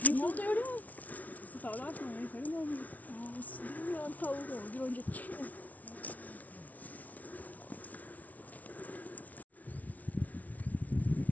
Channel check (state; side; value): late; right; 0.073 ms